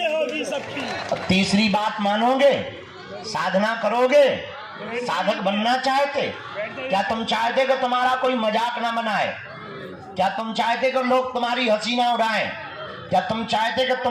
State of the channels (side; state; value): both; identical; correlation 1.00